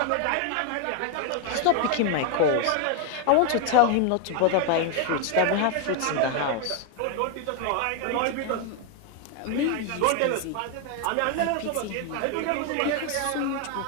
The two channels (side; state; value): both; different; correlation 0.01